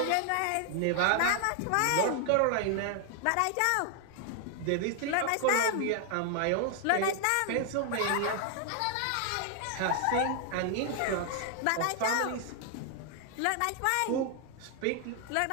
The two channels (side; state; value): both; different; correlation 0.00